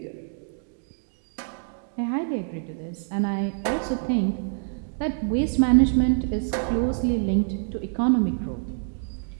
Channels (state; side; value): silent; left; digital silence